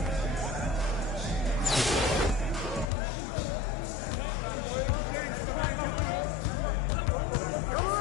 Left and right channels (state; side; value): drops out; right; at 2.9 s